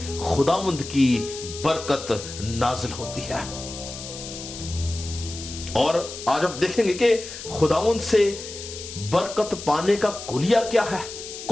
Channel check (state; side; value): noise; left; hiss, 11 dB below the sound